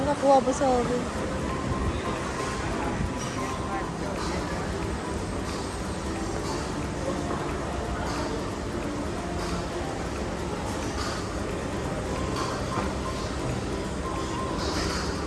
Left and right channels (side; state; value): both; identical; correlation 1.00